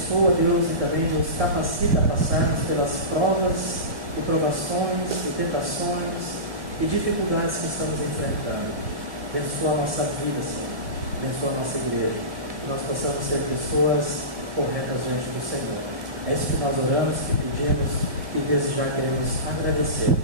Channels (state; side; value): late; left; 1.8 ms